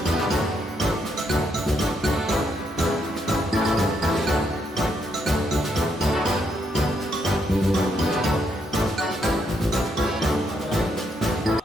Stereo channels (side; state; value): both; normal; correlation 0.76